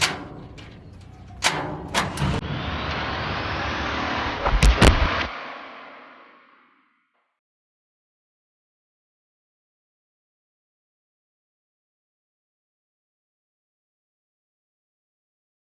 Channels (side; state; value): both; identical; correlation 1.00